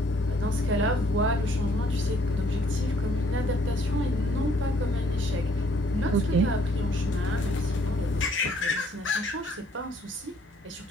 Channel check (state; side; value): normal; both; correlation 0.63